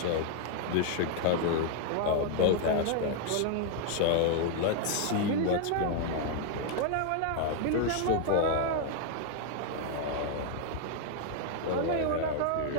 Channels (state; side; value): different; both; correlation 0.00